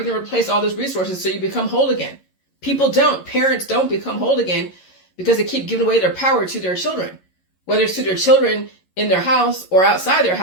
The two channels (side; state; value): right; late; 11 ms